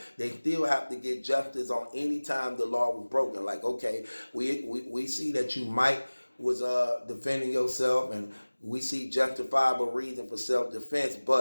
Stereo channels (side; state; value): both; inverted; correlation -1.00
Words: they still have to get justice on any time the law was broken. Like, okay, we see that you might was defending yourself, and we see justifiable reason for self-defense,